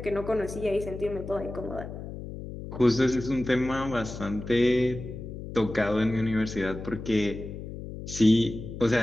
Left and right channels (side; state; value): left; noise; hum, 10 dB below the sound